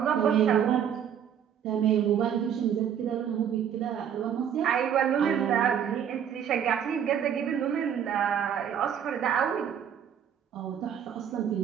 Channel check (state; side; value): quieter; left; 8.7 dB